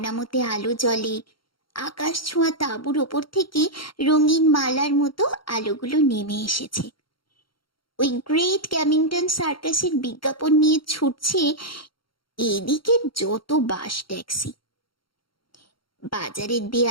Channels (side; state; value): right; late; 0.73 ms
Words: আলো জ্বলে, আকাশ ছোঁয়া তাঁবুর ওপর থেকে রঙিন মালার মতো আলোগুলো নেমে এসেছে। ওই গ্রেট ক্যামিংটন সার্কাসের বিজ্ঞাপন নিয়ে ছুটছে এদিকে যত বাস ট্যাক্সি। বাজারের